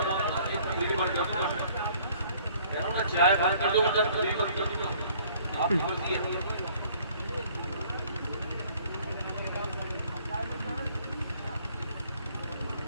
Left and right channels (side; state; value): both; inverted; correlation -0.57